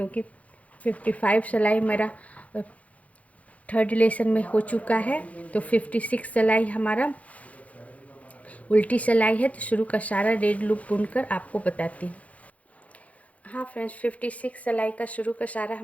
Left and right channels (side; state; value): right; late; 0.067 ms